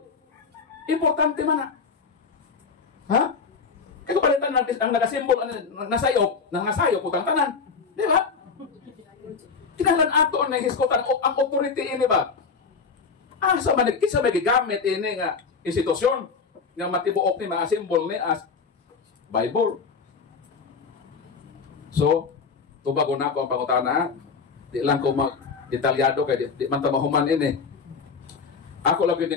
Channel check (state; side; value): quieter; right; 5.3 dB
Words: Importante man na. Ha? Kaya kung palitan ang nagasimbol, nasayop, putang tanan. Di ba? Kinalan ato ang nahisgutan, ang authority ini ba? Sa manigkisa may gigamit ini nga institusyon nga matibuok ni mga simbol ni as Bible. So, tubago na ako ang pangutana. Di lang ko mag-detalyado kay di man tamahuman ini. Ako lang